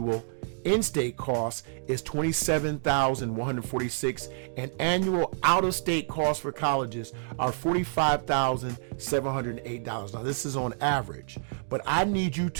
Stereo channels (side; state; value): left; silent; digital silence